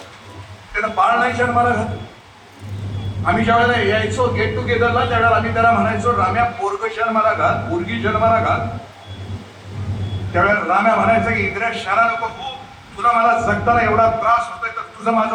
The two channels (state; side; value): identical; both; correlation 1.00